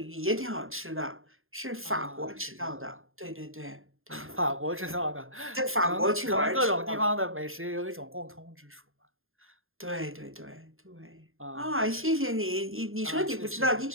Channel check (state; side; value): late; left; 0.60 ms